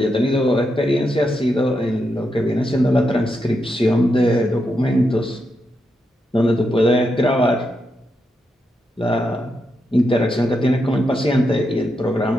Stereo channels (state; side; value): normal; both; correlation 0.84